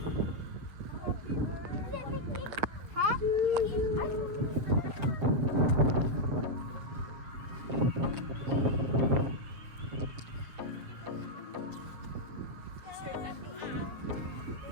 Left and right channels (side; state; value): left; late; 7.5 ms